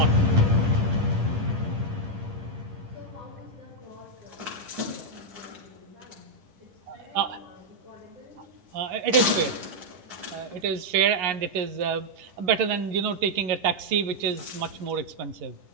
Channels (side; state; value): left; late; 10 ms